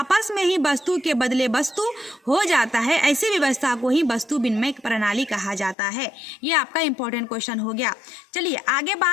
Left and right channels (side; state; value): right; drops out; at 5.8 s